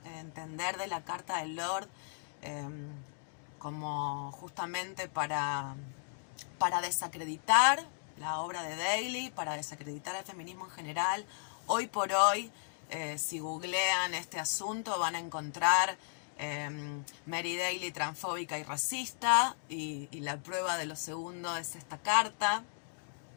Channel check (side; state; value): right; silent; digital silence